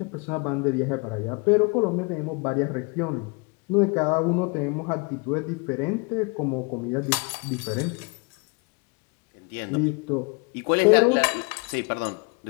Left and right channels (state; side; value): quieter; right; 30.9 dB